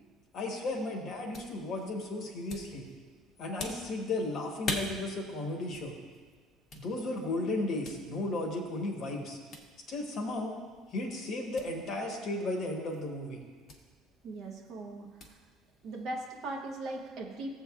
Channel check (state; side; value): normal; both; correlation 0.52